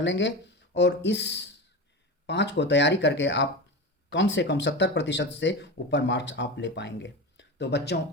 लेंगे। और इस 5 को तैयारी करके आप कम से कम 70% से ऊपर मार्क्स आप ले पाएंगे। तो बच्चों,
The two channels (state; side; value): normal; both; correlation 0.25